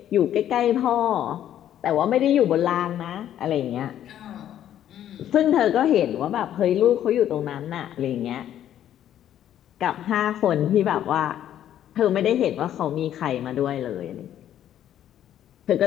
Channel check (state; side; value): quieter; right; 11.0 dB